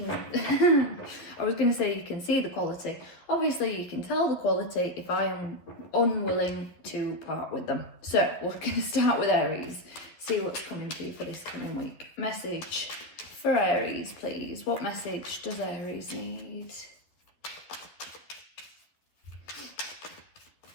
I was going to say you can see the quality. Obviously you can tell the quality if I am unwilling to part with them. So we're going to start with Aries, see what's coming to you for this coming week. Message for Aries, please. What message does Aries need?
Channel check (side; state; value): right; late; 11 ms